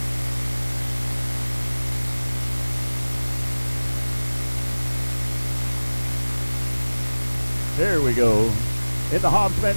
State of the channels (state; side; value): inverted; both; correlation -1.00